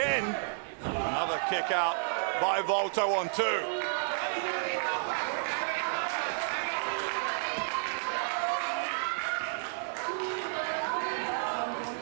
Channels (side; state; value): left; silent; digital silence